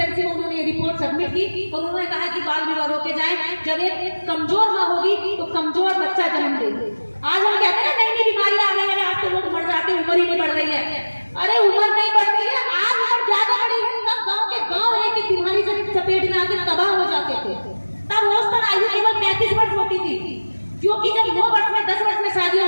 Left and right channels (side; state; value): both; inverted; correlation -1.00